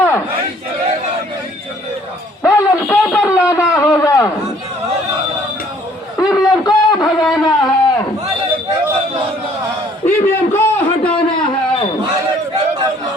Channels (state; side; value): normal; both; correlation 0.59